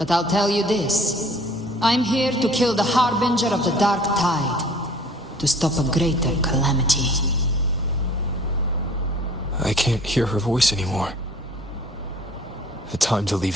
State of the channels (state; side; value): normal; both; correlation 0.51